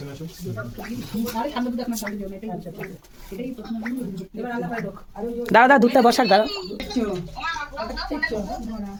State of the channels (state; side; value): identical; both; correlation 1.00